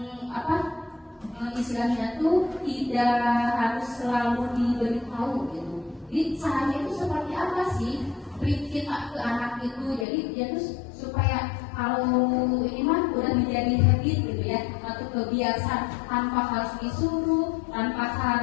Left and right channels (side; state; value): right; drops out; at 10.1 s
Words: istilahnya tuh tidak harus selalu diberitahu gitu. Jadi caranya itu seperti apa sih beri kita ke anak itu, jadi dia tuh supaya kalau ini mah udah menjadi habit gitu ya, atau kebiasaan tanpa harus disuruh, tanpa